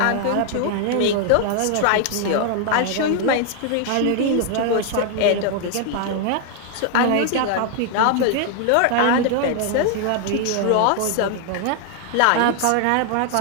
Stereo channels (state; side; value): different; both; correlation 0.00